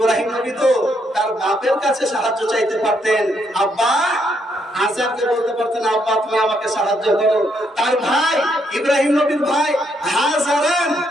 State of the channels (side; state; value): both; normal; correlation 0.75